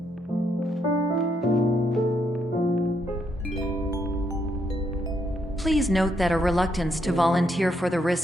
Please note that a reluctance to volunteer for the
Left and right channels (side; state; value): both; normal; correlation 0.76